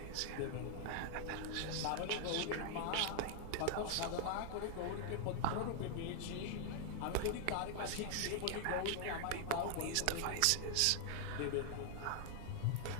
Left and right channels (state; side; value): different; both; correlation 0.00